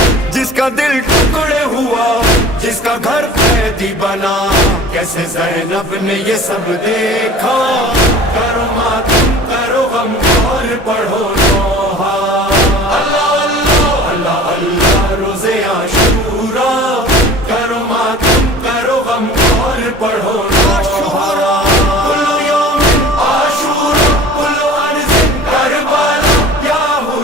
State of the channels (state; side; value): normal; both; correlation 0.43